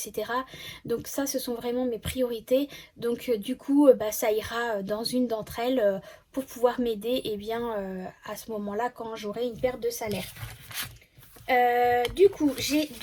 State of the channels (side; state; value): both; identical; correlation 1.00